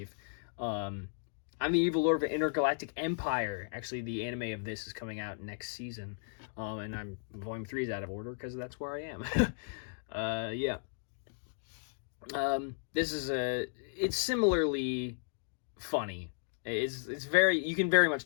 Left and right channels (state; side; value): silent; right; digital silence